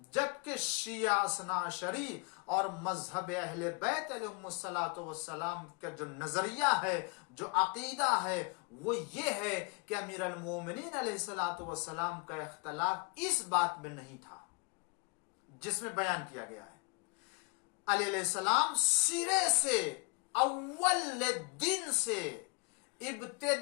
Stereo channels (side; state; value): right; quieter; 30.2 dB